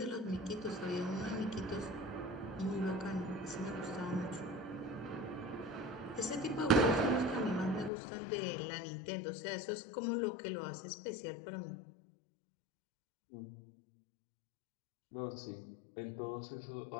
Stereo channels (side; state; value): right; drops out; at 7.9 s